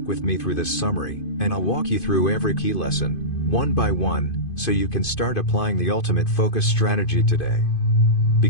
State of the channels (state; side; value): late; right; 2.5 ms